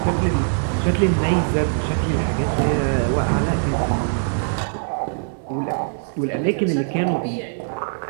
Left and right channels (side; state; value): left; silent; 55 dB below the other